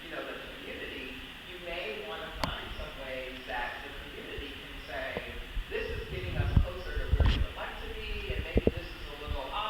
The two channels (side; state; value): both; identical; correlation 1.00